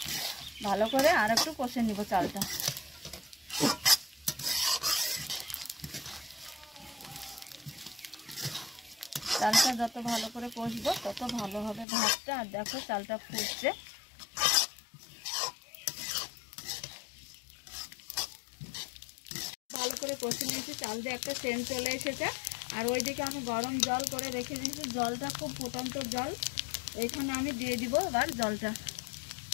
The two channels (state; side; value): drops out; right; at 11.9 s